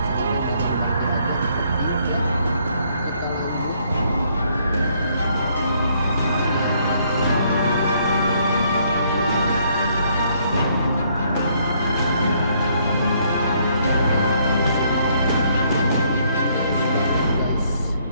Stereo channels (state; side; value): inverted; both; correlation -0.68